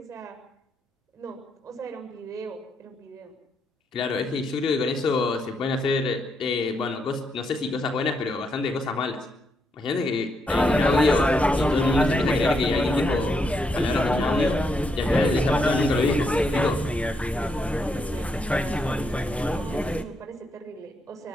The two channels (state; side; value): normal; both; correlation 0.79